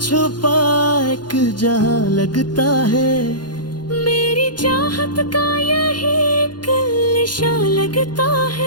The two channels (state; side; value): late; right; 0.71 ms